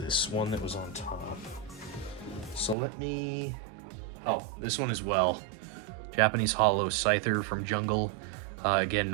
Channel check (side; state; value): left; drops out; at 2.8 s